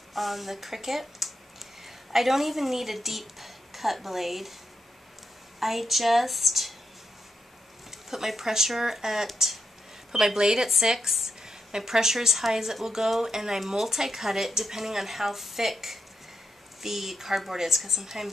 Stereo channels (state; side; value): normal; both; correlation 0.83